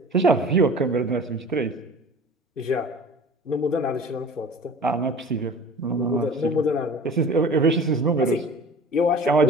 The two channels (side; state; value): both; normal; correlation 0.42